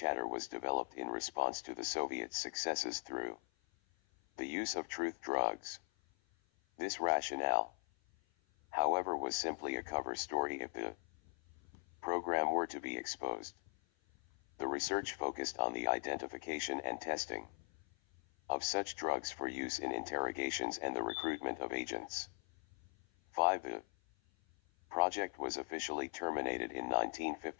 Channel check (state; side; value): silent; right; 51 dB below the other